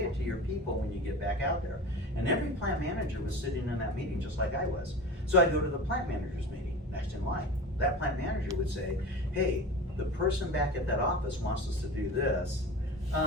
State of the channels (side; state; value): both; normal; correlation 0.33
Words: it to your people when you get back out there. And every plant manager was sitting in that meeting just like I was. So I'd go to the plant manager's meeting next in line. That plant manager would say, hey, the person back at that office wants us to do this.